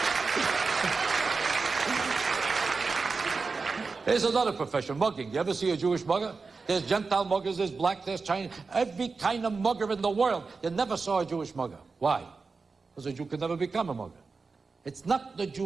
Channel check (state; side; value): quieter; left; 4.4 dB